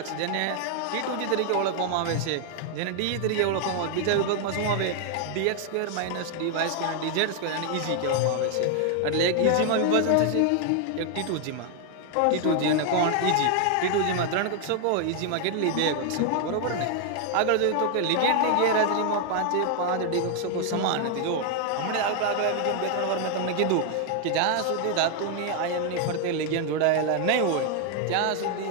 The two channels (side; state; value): both; different; correlation 0.00